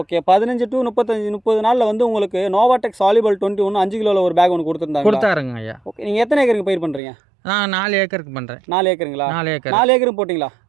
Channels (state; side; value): drops out; left; at 7.0 s